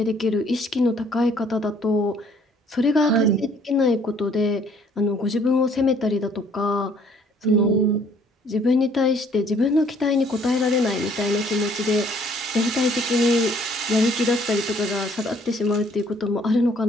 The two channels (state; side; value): normal; both; correlation 0.61